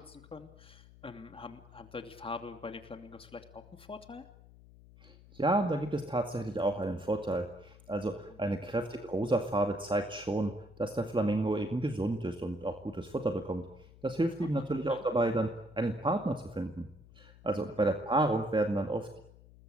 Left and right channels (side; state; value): left; noise; hum, 21 dB below the sound